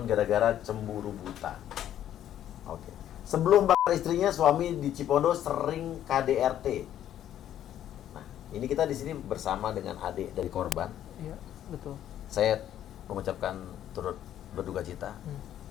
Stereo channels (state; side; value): quieter; right; 11.2 dB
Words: gara-gara cemburu buta. Oke. Sebelum bakar istrinya, suami di Cipondo sering KDRT. Nah, ini kita di sini bersama dengan adik dari korban. Iya, betul. Saya mengucapkan turut berduka cita.